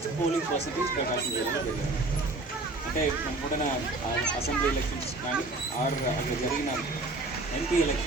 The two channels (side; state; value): left; quieter; 3.0 dB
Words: పోలింగ్ పర్సంటేజ్ ప్రకాశం జిల్లాలో జరిగింది. అంటే మనకున్న అసెంబ్లీ ఎలక్షన్స్ కానీ ఆర్ అక్కడ జరిగిన ఎంపీ